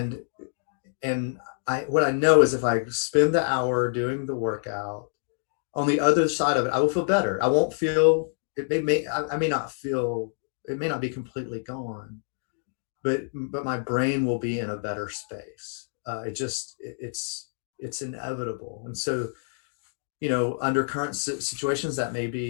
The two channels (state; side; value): silent; right; digital silence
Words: what I know is if I spend the hour doing the workout, on the other side of it, I will feel better. I won't feel it. I may not feel, it may not be completely gone, but my brain will be in a better space. It's inevitable. And so, under current situations, that may